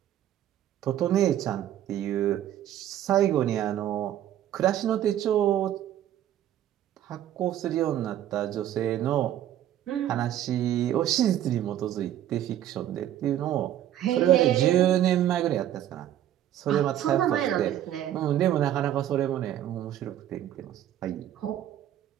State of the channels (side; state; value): left; quieter; 11.7 dB